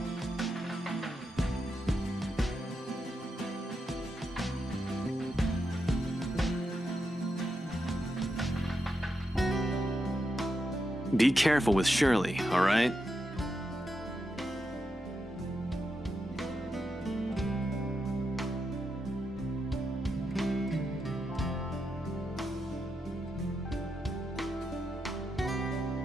Be careful with Shirley, all right?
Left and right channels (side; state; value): both; normal; correlation 0.85